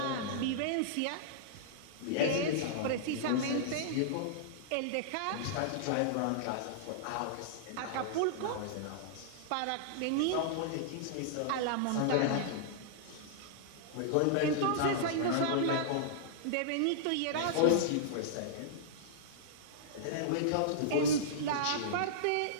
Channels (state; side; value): different; both; correlation -0.02